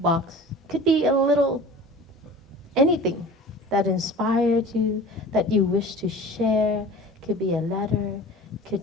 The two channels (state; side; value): normal; both; correlation 0.40